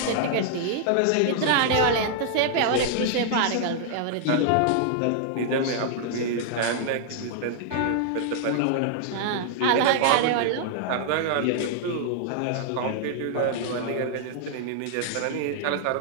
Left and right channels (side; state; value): both; different; correlation -0.01